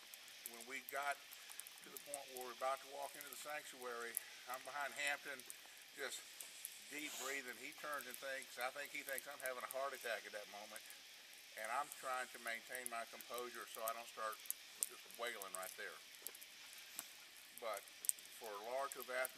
when we got to the point where we're about to walk into the sanctuary, I'm behind Hampton, just deep breathing. He turns and thinks, I think he thinks I'm having a heart attack at that moment, and I'm trying to maintain my composure so I don't start just wailing right there. But for Laura to have asked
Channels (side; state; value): both; identical; correlation 1.00